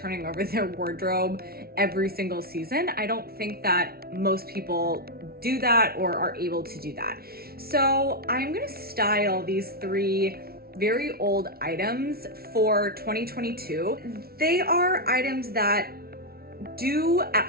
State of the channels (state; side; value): late; left; 0.44 ms